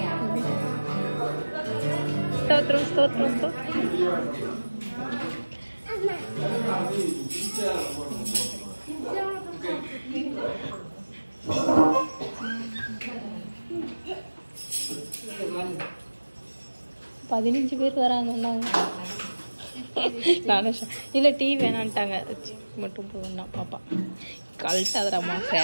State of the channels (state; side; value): inverted; both; correlation -1.00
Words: స్తోత్రం స్తోత్రం స్తోత్రం. பதினஞ்சு பேர் வராங்கன்னாங்க. இல்லை டீ வேணான்ட்டாங்க, மட்டும் போகணும்னா பாப்பா கழட்டாதராம்மா